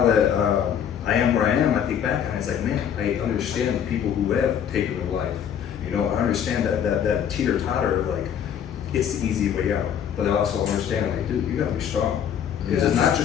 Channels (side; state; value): right; quieter; 8.8 dB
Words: that I am where I am, I think back and it's like, man, I understand the people who have taken their life. You know, I understand that teeter-totter of like, it's the easy way out. But I also understand, like, dude, you gotta be strong. Because it's not